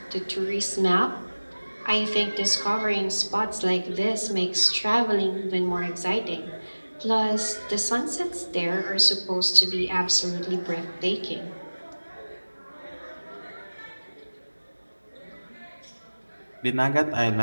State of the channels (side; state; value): both; inverted; correlation -1.00